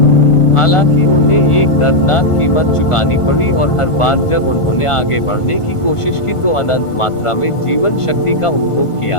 हालांकि उन्हें एक दर्दनाक कीमत चुकानी पड़ी, और हर बार जब उन्होंने आगे बढ़ने की कोशिश की तो अनंत मात्रा में जीवन शक्ति का उपभोग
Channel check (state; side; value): late; right; 1.5 ms